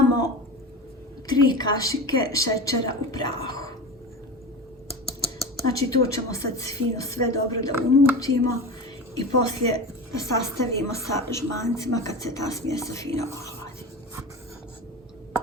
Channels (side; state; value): both; normal; correlation 0.28